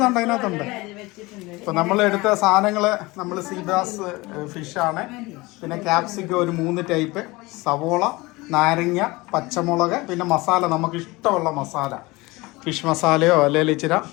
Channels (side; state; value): right; quieter; 22.3 dB